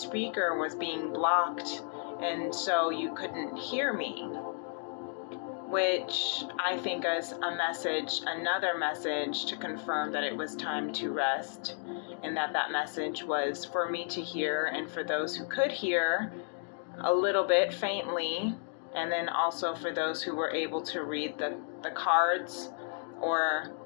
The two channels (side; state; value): right; silent; 56 dB below the other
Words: was being blocked, and so you couldn't hear me, which I think is a message, another message to confirm that it was time to rest, and that message was for me to hear, and for those who could hear a little bit faintly, and then also for those who were able to read the cards or